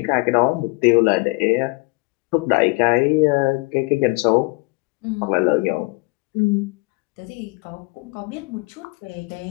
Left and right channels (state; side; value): quieter; right; 27.2 dB